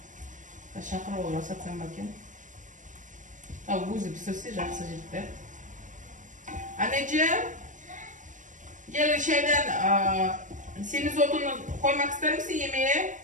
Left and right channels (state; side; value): late; left; 0.37 ms